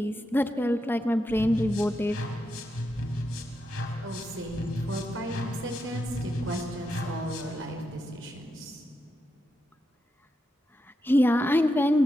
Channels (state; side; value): normal; both; correlation 0.85